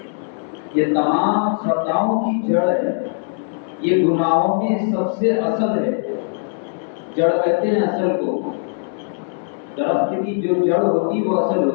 یہ تمام خطاؤں کی جڑ ہے، یہ گناہوں میں سب سے اصل ہے. جڑ کہتے ہیں اصل کو، درخت کی جو جڑ ہوتی وہ اصل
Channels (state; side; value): silent; right; digital silence